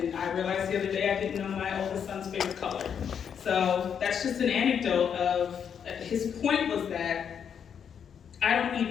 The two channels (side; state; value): right; quieter; 7.7 dB